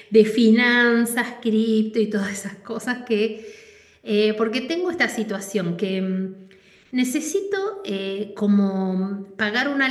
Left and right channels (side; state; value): both; identical; correlation 1.00